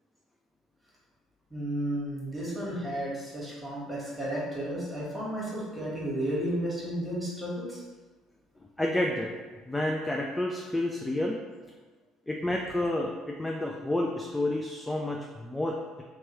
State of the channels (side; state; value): both; normal; correlation 0.78